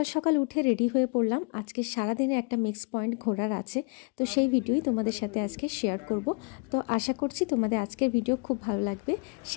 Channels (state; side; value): quieter; right; 34.2 dB